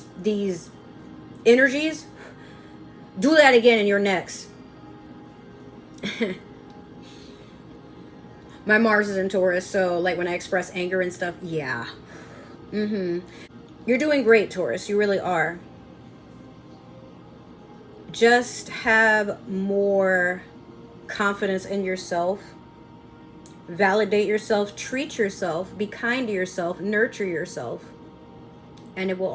these energies do that again in your next. My Mars is in Taurus, so like when I express anger and stuff, yeah. You're doing great, Taurus. You really are. Just have more confidence in yourself. Validate yourself, treat yourself, be kind to yourself, nurture yourself, and it will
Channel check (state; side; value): identical; both; correlation 1.00